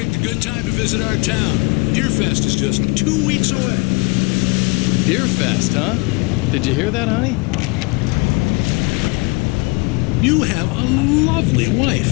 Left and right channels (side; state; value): right; quieter; 28.8 dB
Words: a good time to visit our town. Deerfest is just 2 weeks away. Deerfest, huh? Did you hear that, honey? You have a lovely wife,